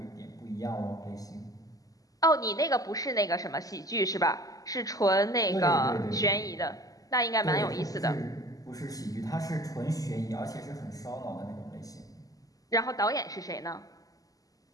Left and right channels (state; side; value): late; right; 0.17 ms